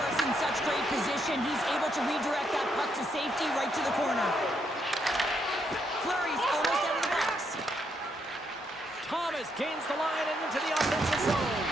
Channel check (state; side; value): normal; both; correlation 0.76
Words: in such great position. He's able to redirect that puck to safety right to the corner. Fleury's almost out of the box. Thomas gains the line and into the offensive zone.